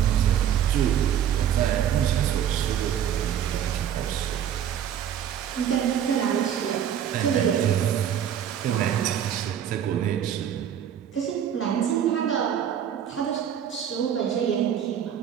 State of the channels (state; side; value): quieter; left; 9.4 dB